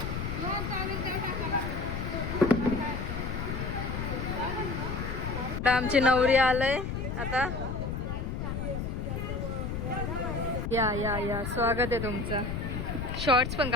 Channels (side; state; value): left; noise; rumble, 3 dB below the sound